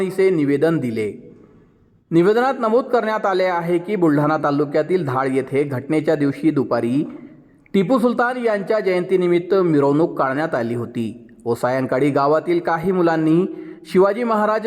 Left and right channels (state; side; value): identical; both; correlation 1.00